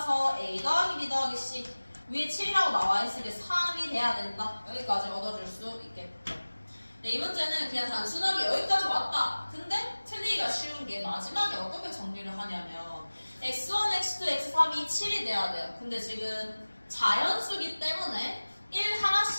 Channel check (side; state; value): both; inverted; correlation -1.00